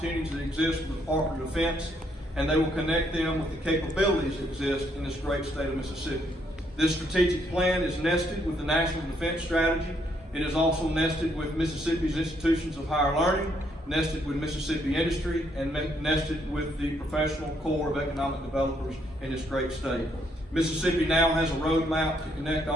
that exist with the Department of Defense, and they will connect them with the capabilities that exist in this great state of Mississippi. This strategic plan is nested with the National Defense Strategy It is also nested with Mississippi's institutions of higher learning, nested with Mississippi industry, and nested with the professional core of economic developers in this great state. Mississippi now has a roadmap to connect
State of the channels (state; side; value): normal; both; correlation 0.72